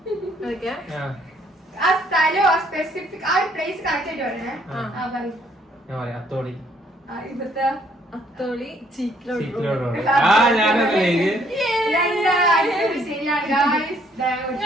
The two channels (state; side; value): normal; both; correlation 0.66